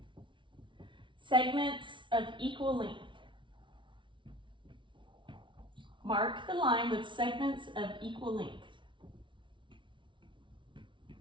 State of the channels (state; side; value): late; left; 0.24 ms